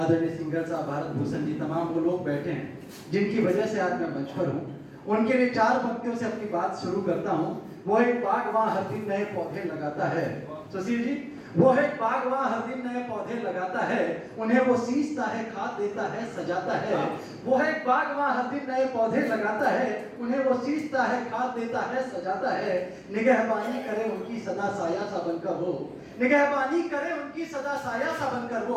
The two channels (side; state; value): both; identical; correlation 1.00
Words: सिंगर साहब, भारत भूषण जी, तमाम वो लोग बैठे हैं जिनकी वजह से आज मैं मंच पर हूँ। उनके लिए 4 पंक्तियों से अपनी बात शुरू करता हूँ। वो एक बाग वहाँ हर दिन नए पौधे लगाता है। सुशील जी, वो एक बाग वहाँ हर दिन नए पौधे लगाता है, उन्हें वो सींचता है, खाद देता है, सजाता है। वो एक बाग वहाँ हर दिन नए पौधे लगाता है, उन्हें वो सींचता है, खाद देता है, सजाता है। निगहबानी करे उनकी सदा साया सा बनकर वो, निगहबानी करे उनकी सदा साया सा बनकर